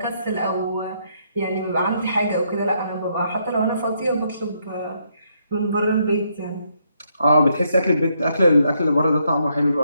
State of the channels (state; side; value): inverted; both; correlation -0.75